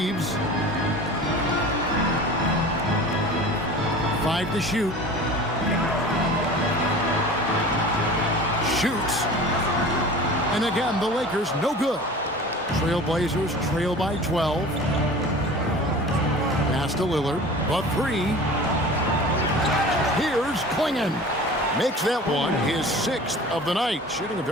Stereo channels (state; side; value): normal; both; correlation 0.39